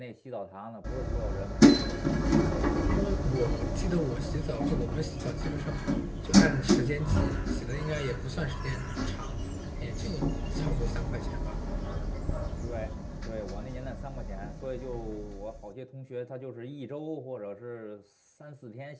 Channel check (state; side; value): identical; both; correlation 1.00